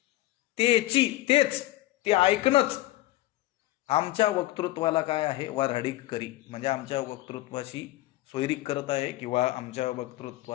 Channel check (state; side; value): quieter; right; 17.1 dB